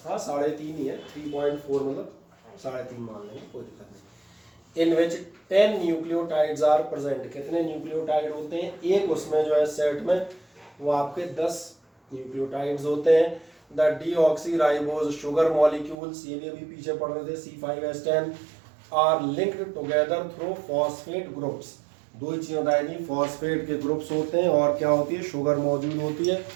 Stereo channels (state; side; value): drops out; left; at 16.0 s